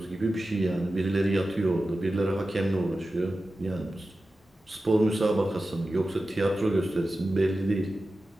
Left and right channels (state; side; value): normal; both; correlation 0.94